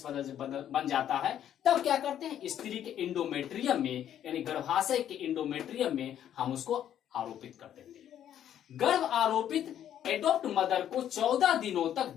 बन जाता है, तब क्या करते हैं, स्त्री के इंडोमेट्रियम में यानी गर्भाशय के इंडोमेट्रियम में हम उसको आरोपित कर देते हैं। गर्भ आरोपित एडॉप्ट मदर को 14 दिनों तक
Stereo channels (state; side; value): quieter; right; 10.5 dB